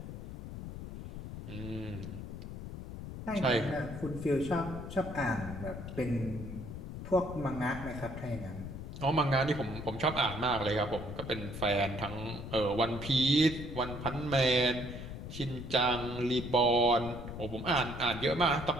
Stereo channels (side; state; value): left; noise; rumble, 9 dB below the sound